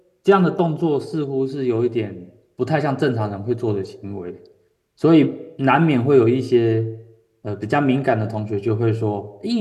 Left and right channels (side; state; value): both; identical; correlation 1.00